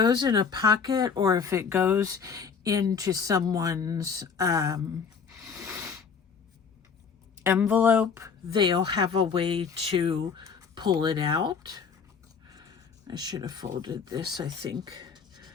in a pocket, or if it goes into someone's envelope, they'll have a way to pull it out. I should have folded this, I think,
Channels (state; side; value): quieter; right; 6.0 dB